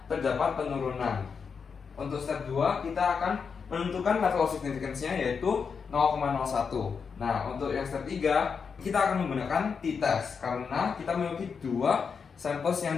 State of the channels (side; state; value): right; quieter; 5.9 dB